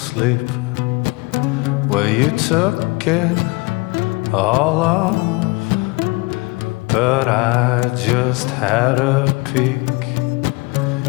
Well, you took it all off, but I just had a peek.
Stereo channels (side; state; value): right; quieter; 25.5 dB